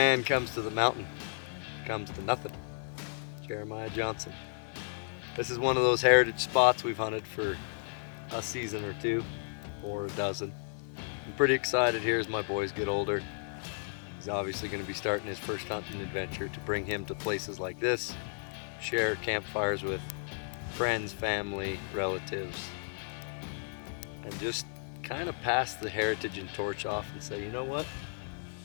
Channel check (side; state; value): right; silent; 56 dB below the other